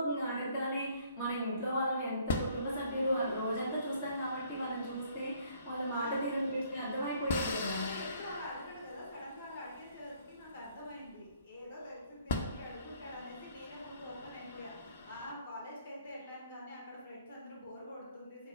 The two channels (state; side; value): inverted; both; correlation -0.62